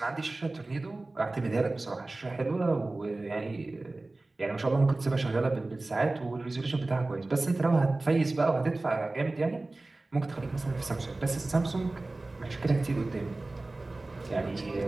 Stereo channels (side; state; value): left; quieter; 3.1 dB